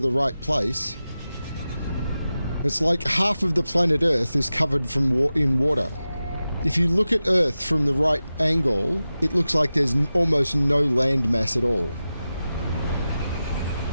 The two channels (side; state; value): both; inverted; correlation -0.94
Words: right place. It's like half of the planet Earth is covered in water. If you look at Earth from the right angle, it looks like there's almost no land mass at all.